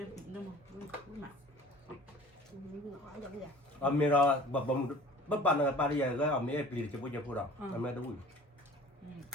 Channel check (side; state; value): both; normal; correlation 0.45